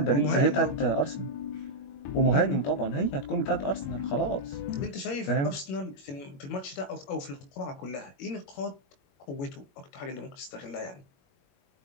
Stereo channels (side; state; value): right; late; 21 ms